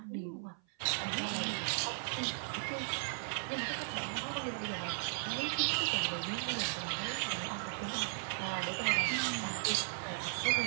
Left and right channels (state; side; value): silent; left; 53 dB below the other